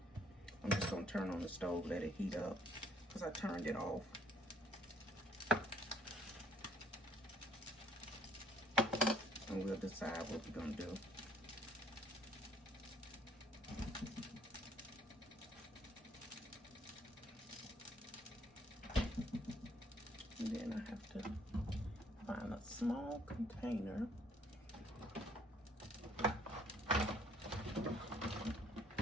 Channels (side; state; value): both; normal; correlation 0.62